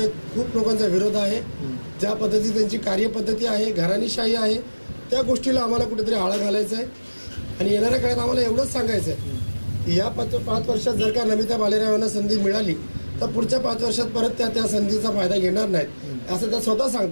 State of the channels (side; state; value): both; inverted; correlation -1.00